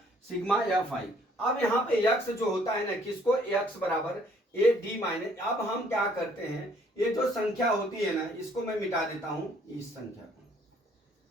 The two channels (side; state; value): both; normal; correlation 0.62